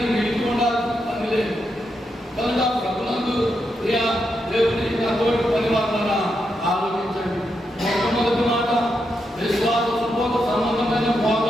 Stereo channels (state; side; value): normal; both; correlation 0.83